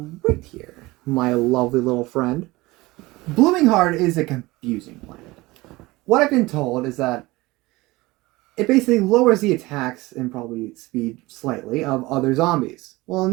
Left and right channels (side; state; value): left; quieter; 20.8 dB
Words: right here, my lovely little friend. Blooming Heart is a confusing plant. What I've been told is that it basically lowers the attacks and probably speed slightly of other zombies. Well,